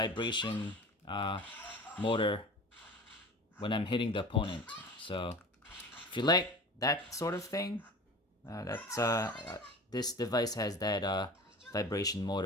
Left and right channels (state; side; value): normal; both; correlation 0.37